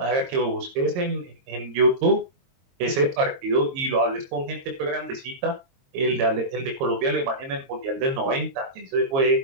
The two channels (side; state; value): left; late; 22 ms